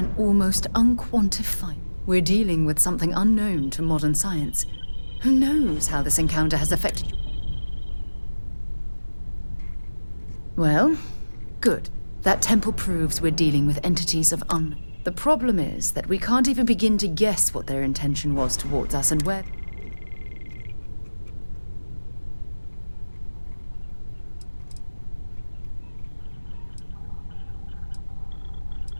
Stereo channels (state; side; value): inverted; both; correlation -1.00